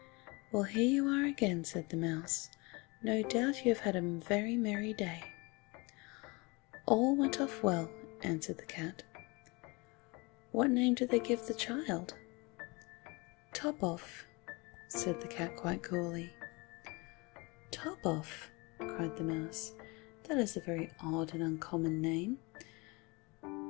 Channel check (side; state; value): right; quieter; 26.8 dB